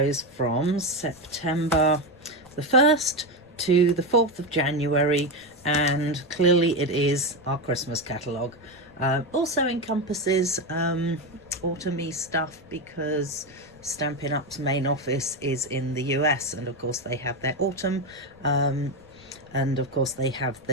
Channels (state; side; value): noise; left; rumble, 27 dB below the sound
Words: from September the 1st to the 4th of January, and clearly it is our Christmas catalogue. Also encompasses autumny stuff because Stampin' Up's main office is in the US, and of course they have their autumn, and of course they have